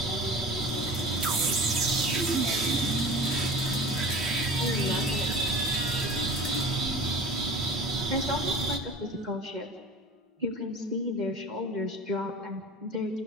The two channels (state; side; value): normal; both; correlation 0.37